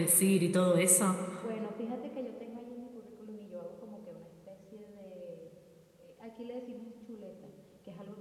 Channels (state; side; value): identical; both; correlation 1.00